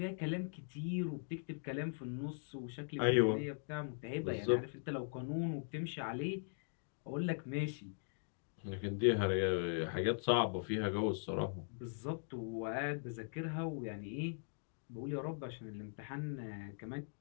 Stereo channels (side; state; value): right; silent; digital silence